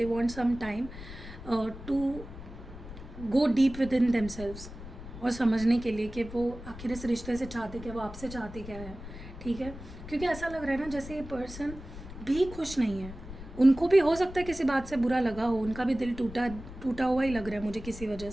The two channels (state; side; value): noise; left; rumble, 13 dB below the sound